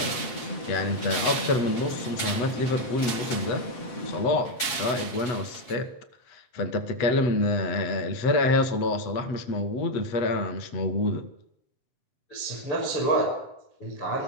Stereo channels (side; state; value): right; late; 7.4 ms